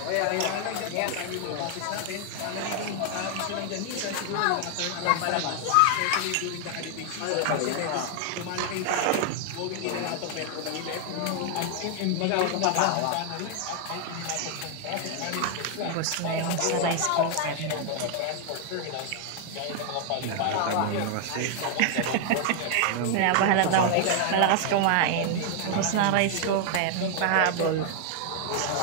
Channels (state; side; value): different; both; correlation 0.00